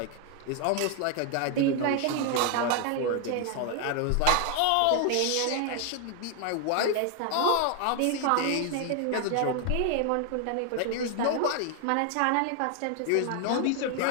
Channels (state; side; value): different; both; correlation 0.00